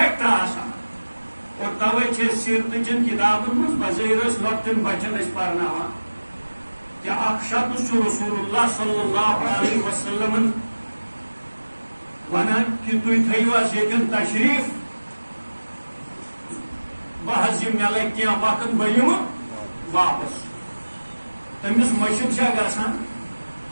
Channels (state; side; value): inverted; both; correlation -1.00